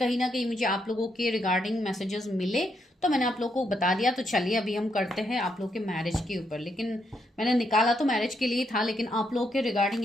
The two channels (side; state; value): both; normal; correlation 0.78